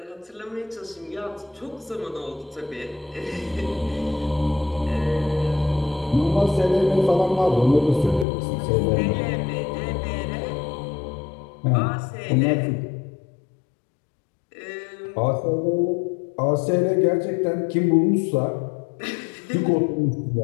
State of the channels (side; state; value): right; drops out; at 8.2 s